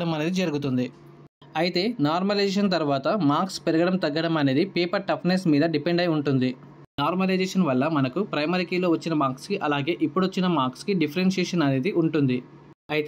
అనేది జరుగుతుంది. అయితే నార్మలైజేషన్ తర్వాత మార్క్స్ పెరగడం తగ్గడం అనేది పేపర్ టఫ్నెస్ మీద డిపెండ్ అయి ఉంటుంది. నార్మలైజేషన్ వల్ల మనకు ప్రైమరీ కీలో వచ్చిన మార్క్స్కి అలాగే ఇప్పుడు వచ్చిన మార్క్స్కి డిఫరెన్షియేషన్ అనేది ఉంటుంది.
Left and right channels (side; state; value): both; identical; correlation 1.00